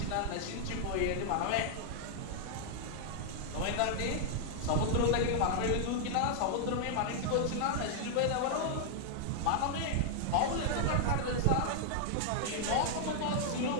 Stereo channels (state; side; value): different; both; correlation -0.01